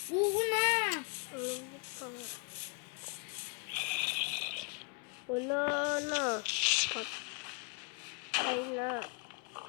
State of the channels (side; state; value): right; quieter; 32.8 dB